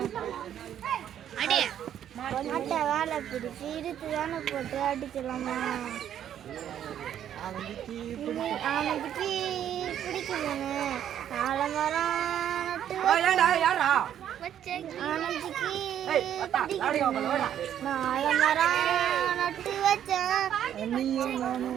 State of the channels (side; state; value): left; quieter; 10.2 dB